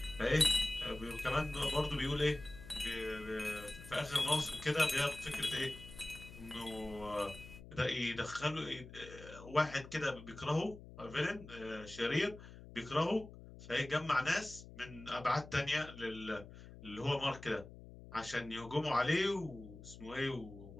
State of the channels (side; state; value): left; noise; hum, 16 dB below the sound